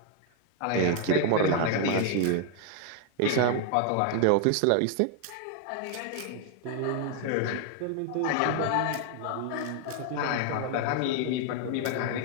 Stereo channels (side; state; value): both; different; correlation 0.00